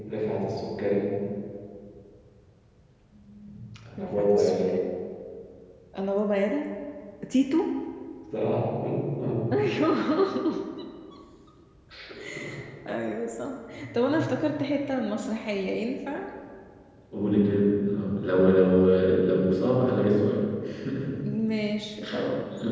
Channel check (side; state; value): both; identical; correlation 1.00